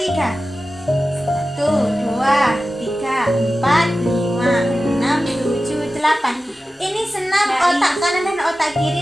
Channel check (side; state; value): both; normal; correlation 0.94